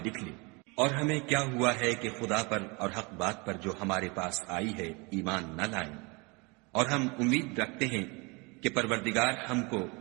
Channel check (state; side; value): quieter; left; 28.6 dB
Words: لکھ لے، اور ہمیں کیا ہوا ہے کہ خدا پر اور حق بات پر جو ہمارے پاس آئی ہے ایمان نہ لائیں، اور ہم امید رکھتے ہیں کہ پروردگار ہم کو